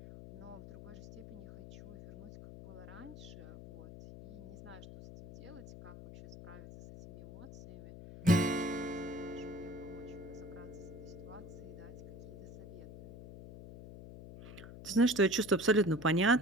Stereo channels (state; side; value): noise; left; hum, 14 dB below the sound